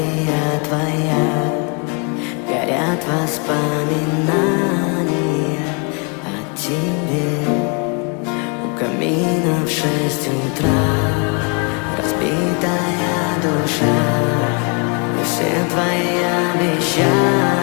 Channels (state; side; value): quieter; right; 35.4 dB